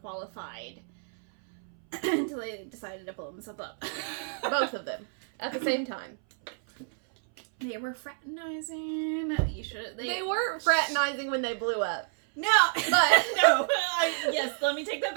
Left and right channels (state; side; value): silent; left; 58 dB below the other